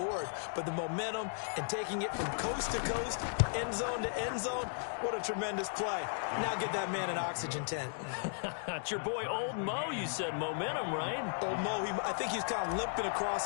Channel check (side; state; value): right; silent; digital silence